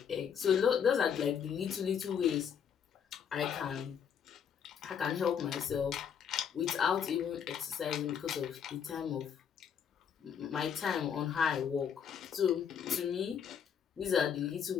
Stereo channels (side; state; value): right; quieter; 7.7 dB